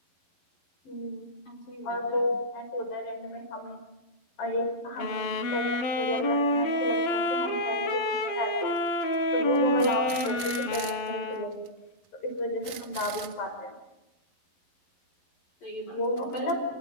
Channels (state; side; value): late; right; 11 ms